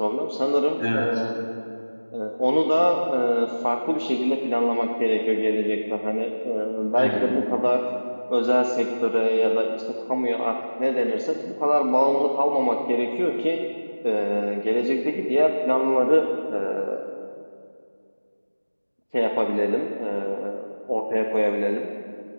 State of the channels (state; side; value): inverted; both; correlation -1.00